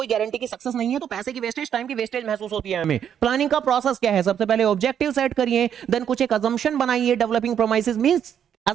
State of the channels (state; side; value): quieter; left; 8.9 dB